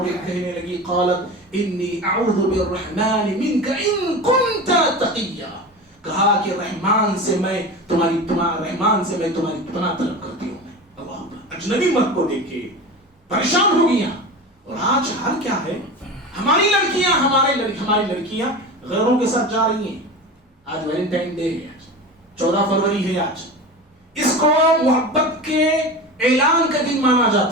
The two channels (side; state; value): both; normal; correlation 0.29